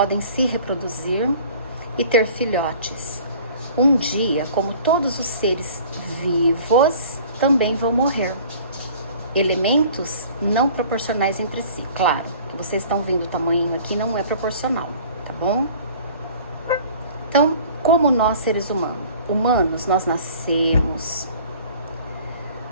se reproduzir e ter filhotes. Um dia, como todos os seres vivos, também vão morrer. Elementos não proporcionais entre si. Claro, que vocês estão vendo o tamanho aqui não é proporcional, tá bom? Então, como nós seres humanos, nós nascemos,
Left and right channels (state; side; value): inverted; both; correlation -0.48